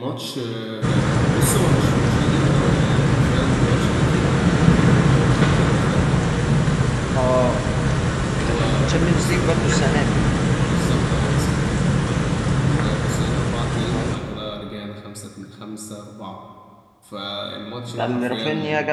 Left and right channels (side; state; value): both; identical; correlation 1.00